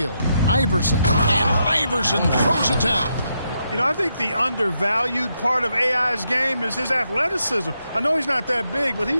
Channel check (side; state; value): both; inverted; correlation -0.80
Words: Iverson. And Iverson throws it down. You know, I think the undervalued part of AI's game is his athleticism. I know he's not that big, but